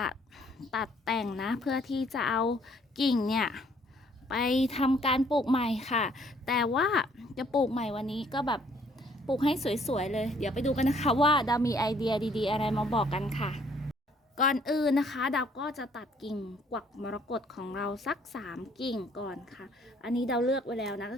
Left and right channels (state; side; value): normal; both; correlation 0.63